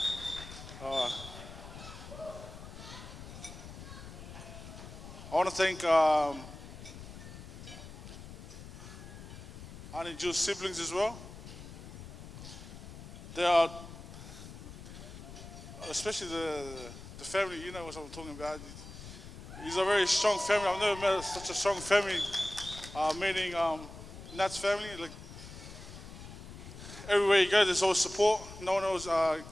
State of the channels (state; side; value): noise; left; rumble, 13 dB below the sound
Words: want to thank Auntie Jill's siblings as well. They are, especially the family, you know what I'm talking about. He's a very strong family. I've never met such a strong family, meaning Nat's family. Like, everywhere you go, there's always support. No